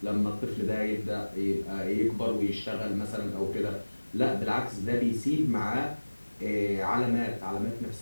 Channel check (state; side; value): inverted; both; correlation -1.00